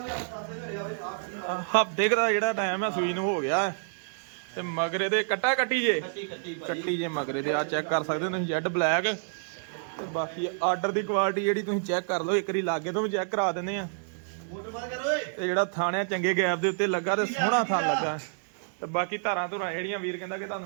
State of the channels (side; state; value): left; silent; digital silence